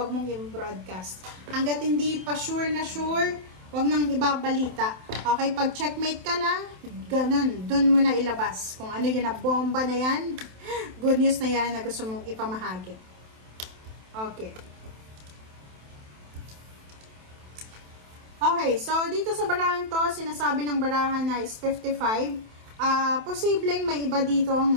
mong i-broadcast. Hanggat hindi pa sure na sure, wag nang ibabalita. Okay, pag checkmate ka na, ganun, dun mo na ilabas. Kung ano yan na bomba na yan, good news na yan na gusto mong ipamahagi. Okay. Okay, so dito sa barahang to, sinasabi ng barahan na is 55. Posibleng may iba ditong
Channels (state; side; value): late; left; 27 ms